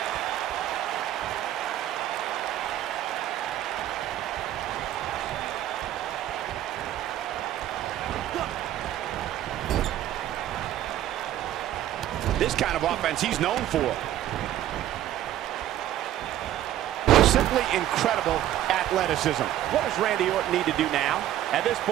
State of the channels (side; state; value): left; quieter; 12.7 dB